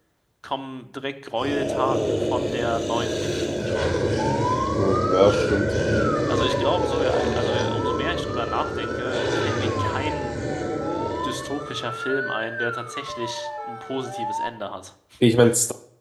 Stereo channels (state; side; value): identical; both; correlation 1.00